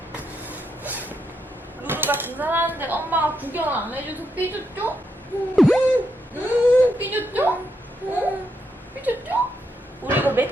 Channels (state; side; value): normal; both; correlation 0.81